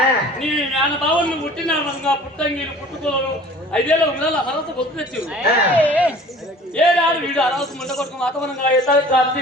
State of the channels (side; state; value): both; normal; correlation 0.47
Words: నీ మేనబావులు పుట్టిన పుట్టంగిలు పుట్టుకోలు 5 ఏళ్ళ ఉండాలి అర్హత పొత్తు తెచ్చి ఏడాడు వీడు అర్హత ముండ కొడుకు వాతావరణంగా ఎత్తాడు